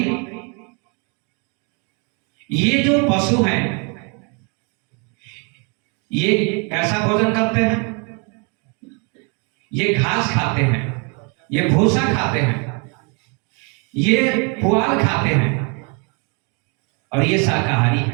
ये जो पशु हैं ये कैसा भोजन करते हैं? ये घास खाते हैं, ये भूसा खाते हैं, ये पुआल खाते हैं, और ये शाकाहारी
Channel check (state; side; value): quieter; left; 34.9 dB